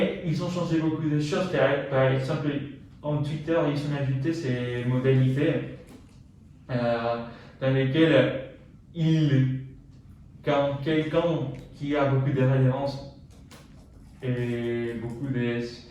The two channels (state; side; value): identical; both; correlation 1.00